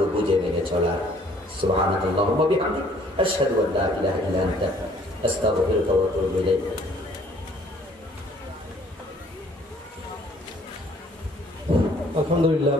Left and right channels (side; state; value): both; normal; correlation 0.59